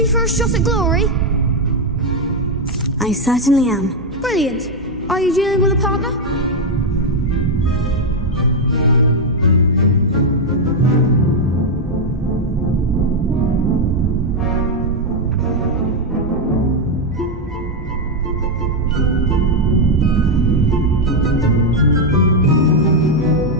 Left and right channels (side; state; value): both; normal; correlation 0.02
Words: for a shot at glory? I certainly am. Brilliant. Are you dealing with a partner?